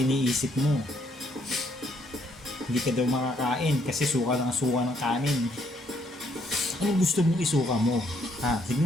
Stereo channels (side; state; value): both; normal; correlation 0.69